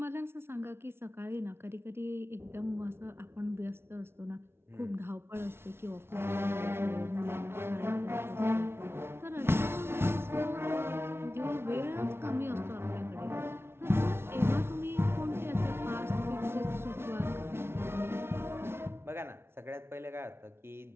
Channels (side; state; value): left; late; 0.12 ms